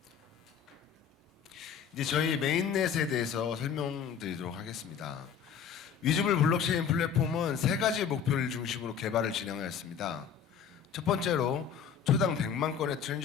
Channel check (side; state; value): right; quieter; 7.5 dB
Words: 이제 저희 메인넷에 대해서 설명드리도록 하겠습니다. 위즈블 블록체인 플랫폼은 세 가지 목표를 중심으로 개발을 진행하였습니다. 첫 번째로 초당 100만 건의